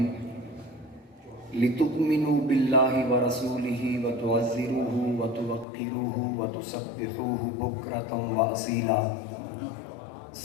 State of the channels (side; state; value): right; drops out; at 5.7 s